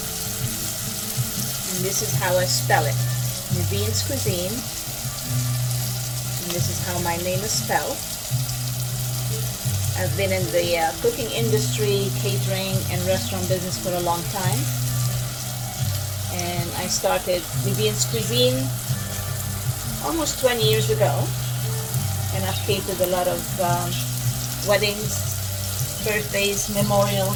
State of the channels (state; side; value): identical; both; correlation 1.00